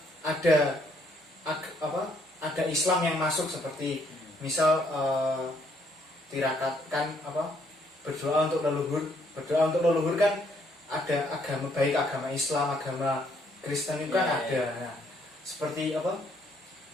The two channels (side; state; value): both; normal; correlation 0.69